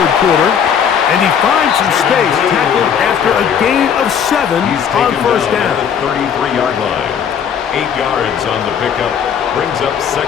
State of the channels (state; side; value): quieter; right; 7.8 dB